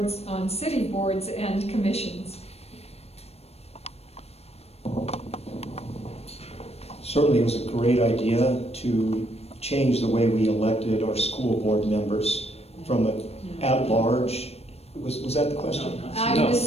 on city boards and commissions? Certainly, it was a great idea to change the way we elected our school board members from an at-large. Was that the question? I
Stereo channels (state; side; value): late; right; 0.30 ms